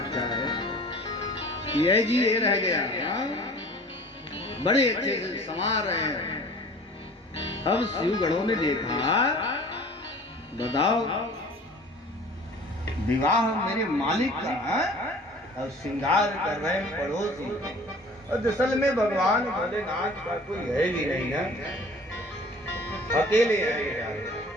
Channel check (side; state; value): both; normal; correlation 0.45